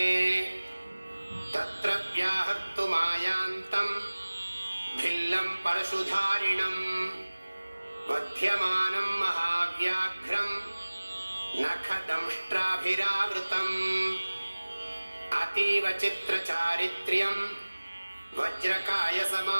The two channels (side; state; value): both; inverted; correlation -1.00